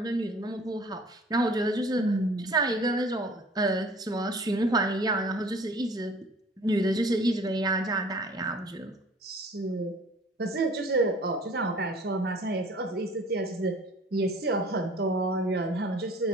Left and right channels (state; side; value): normal; both; correlation 0.50